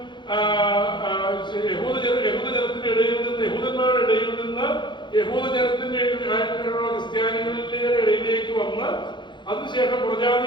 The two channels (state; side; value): late; right; 0.22 ms